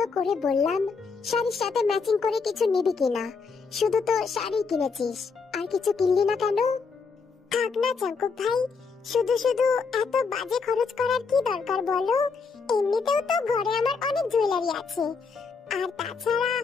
করে বললাম শাড়ির সাথে ম্যাচিং করে কিছু নিবি কিনা, শুধু তো শাড়ি কিনেছিস, আর কিছু কিনলি না কেন? থাক না জঙ্কুক ভাই, শুধু শুধু এত বাজে খরচ করার কি দরকার বলো? এমনিতেও তো ঘরে আমার অনেক জুয়েলারি আছে, আর তাছাড়া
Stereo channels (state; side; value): quieter; right; 5.0 dB